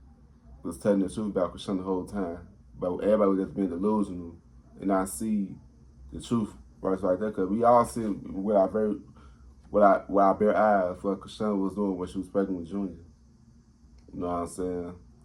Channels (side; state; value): both; identical; correlation 1.00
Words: was telling the truth about Chrisean the whole time. But everybody was just being delusional and not see the truth right there. Because we all see with our bare eyes what Chrisean was doing when she was pregnant with Junior. You know what I'm saying?